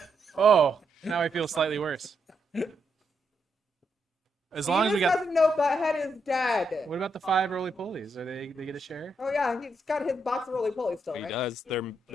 Oh, now I feel slightly worse. As long as we got. doesn't know Butthead is dead. What about the 5 roly polies? Are they get a share? Oh yeah, he's got his box of roly poly still, He right? does. They're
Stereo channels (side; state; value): both; normal; correlation 0.79